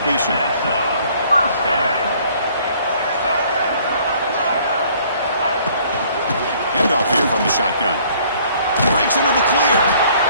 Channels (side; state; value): both; inverted; correlation -0.59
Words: Handoff here from the shotgun. Breaks into the clear.